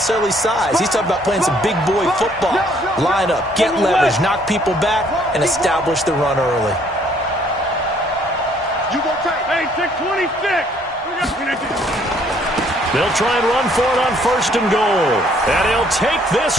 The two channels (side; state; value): both; normal; correlation 0.63